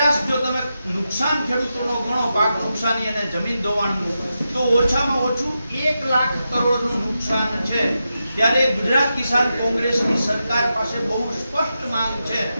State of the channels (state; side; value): inverted; both; correlation -0.89